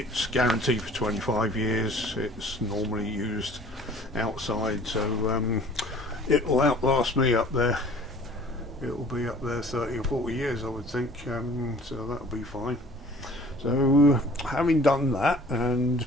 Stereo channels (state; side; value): normal; both; correlation 0.49